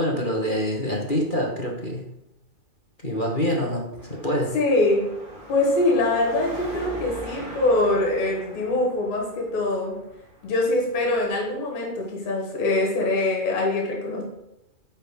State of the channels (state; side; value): late; right; 2.4 ms